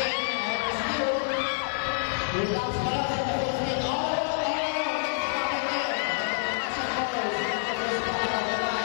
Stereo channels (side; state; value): right; silent; 60 dB below the other